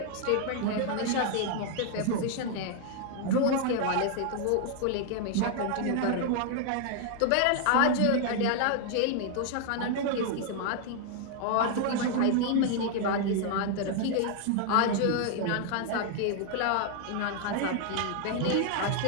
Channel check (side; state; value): both; different; correlation 0.00